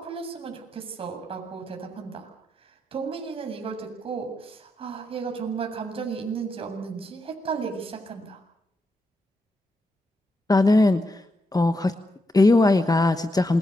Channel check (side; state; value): both; normal; correlation 0.84